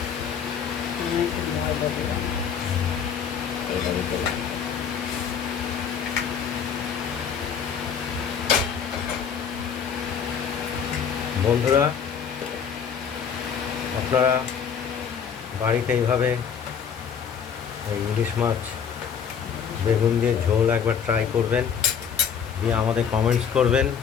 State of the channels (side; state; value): right; quieter; 7.2 dB